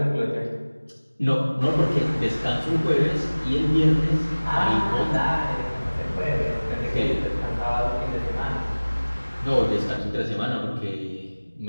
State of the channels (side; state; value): both; inverted; correlation -1.00